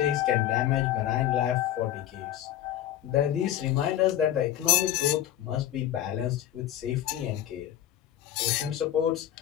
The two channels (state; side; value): quieter; right; 12.0 dB